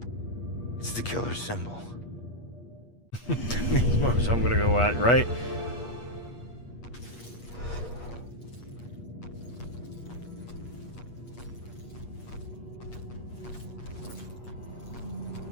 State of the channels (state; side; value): late; right; 8.4 ms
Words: It's the killer's symbol. So I'm gonna go out, right?